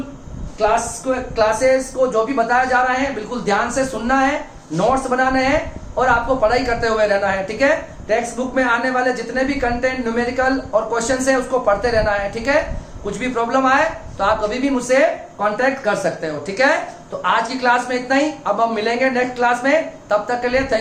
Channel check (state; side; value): identical; both; correlation 1.00